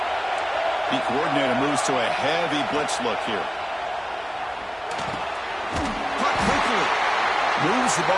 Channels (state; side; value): identical; both; correlation 1.00